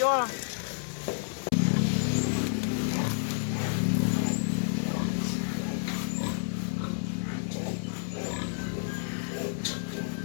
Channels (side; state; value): right; silent; 58 dB below the other